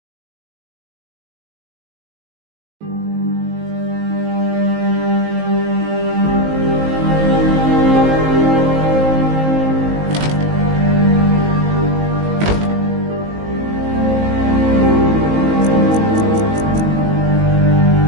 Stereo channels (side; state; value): left; late; 19 ms